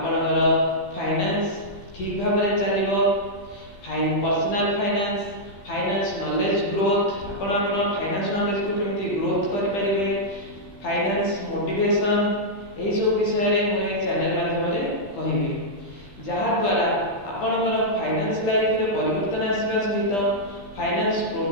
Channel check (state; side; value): late; right; 15 ms